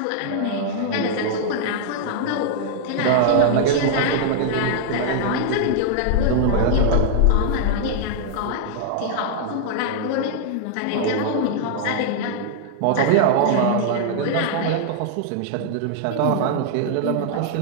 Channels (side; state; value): both; different; correlation -0.01